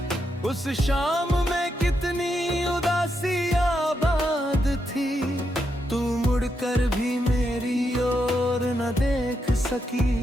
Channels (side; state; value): both; normal; correlation 0.82